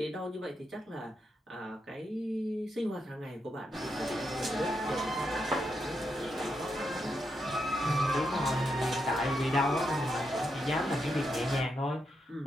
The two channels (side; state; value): both; normal; correlation 0.83